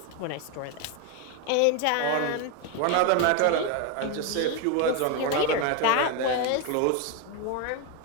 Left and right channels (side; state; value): both; different; correlation 0.02